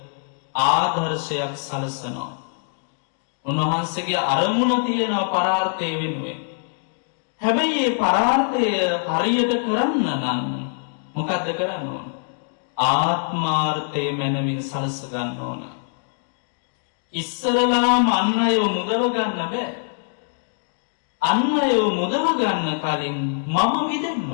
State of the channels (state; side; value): silent; right; digital silence